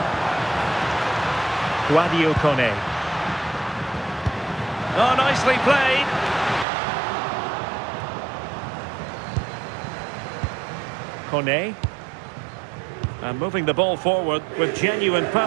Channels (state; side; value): drops out; left; at 6.7 s